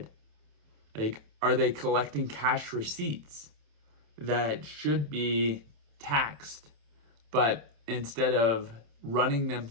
Like, are they collecting cash receipts that should be taxed, but instead of running them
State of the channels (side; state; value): left; late; 27 ms